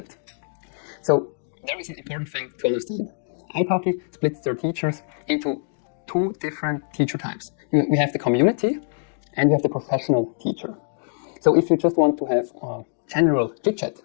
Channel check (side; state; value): right; silent; 59 dB below the other